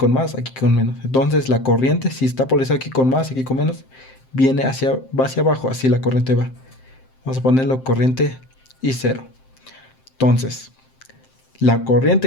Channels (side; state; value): right; late; 7.7 ms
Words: más, aquí con menos. Entonces la corriente, si está polarizada aquí con más, aquí con menos, va hacia abajo, así la corriente va. Vamos a ponerlo corriente I0. Entonces, la